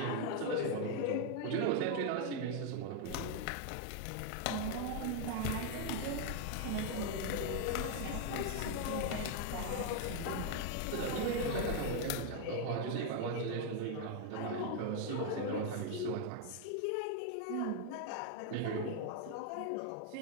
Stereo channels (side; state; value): both; different; correlation 0.00